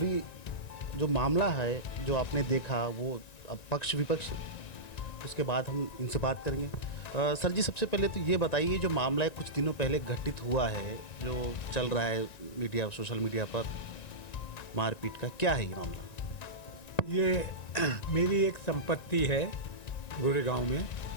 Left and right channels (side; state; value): right; late; 1.9 ms